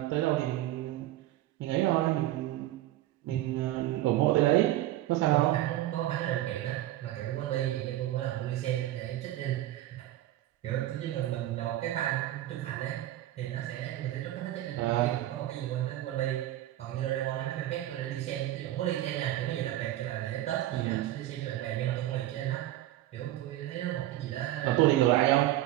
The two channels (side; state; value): left; quieter; 14.6 dB